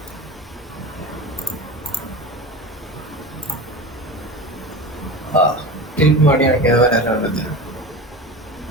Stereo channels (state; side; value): normal; both; correlation 0.29